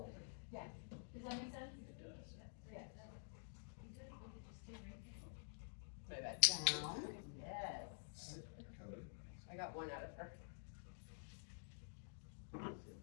Yeah. Does that make sense? Yeah. Play that. Down. Yes. I got one out of her.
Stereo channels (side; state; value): right; silent; digital silence